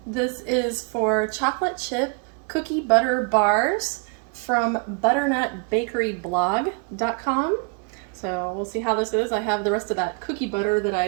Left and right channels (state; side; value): quieter; left; 35.9 dB